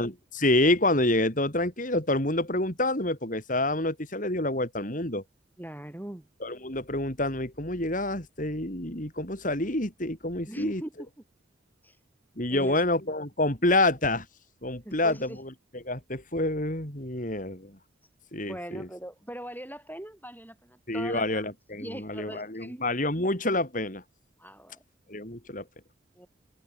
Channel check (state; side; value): normal; both; correlation 0.17